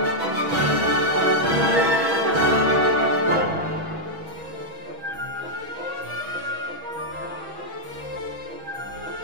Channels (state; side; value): late; left; 6.1 ms